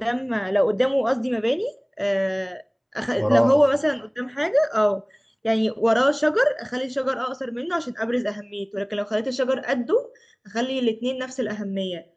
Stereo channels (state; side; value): identical; both; correlation 1.00